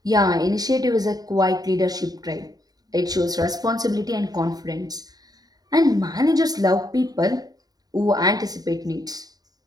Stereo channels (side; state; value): left; late; 0.18 ms